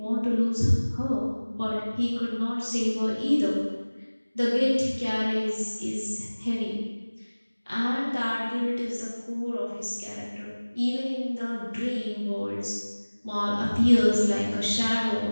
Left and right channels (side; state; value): both; inverted; correlation -1.00